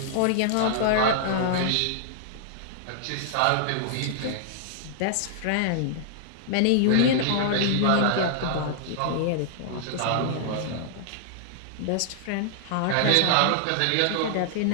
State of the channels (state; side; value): different; both; correlation -0.01